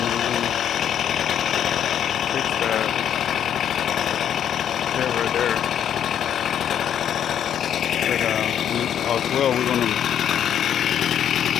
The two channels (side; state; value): right; quieter; 9.5 dB